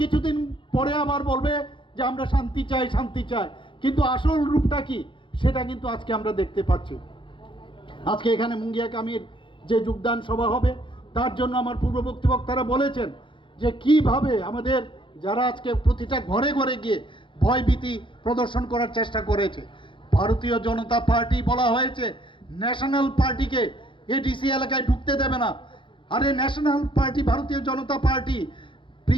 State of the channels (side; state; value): right; late; 0.24 ms